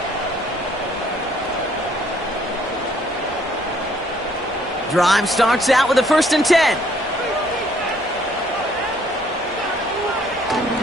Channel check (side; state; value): both; normal; correlation 0.63